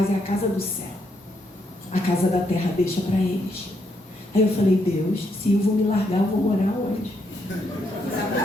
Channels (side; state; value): both; normal; correlation 0.76